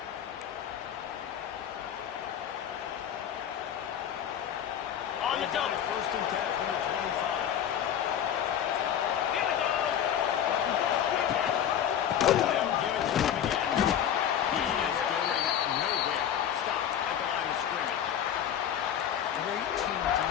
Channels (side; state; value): right; quieter; 9.6 dB